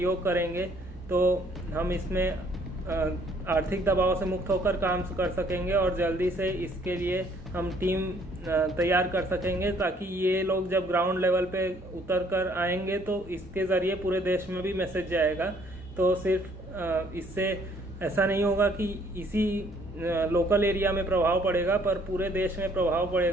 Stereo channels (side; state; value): both; normal; correlation 0.62